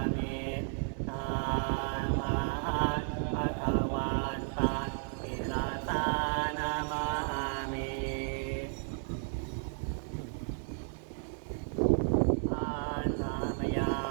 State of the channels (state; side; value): silent; left; digital silence